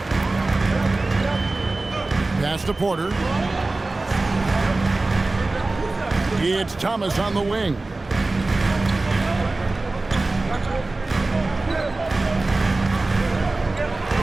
Pass to Porter. It's Thomas on the wing.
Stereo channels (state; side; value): quieter; left; 3.2 dB